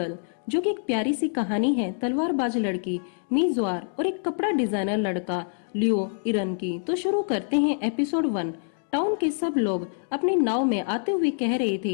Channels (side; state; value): right; silent; digital silence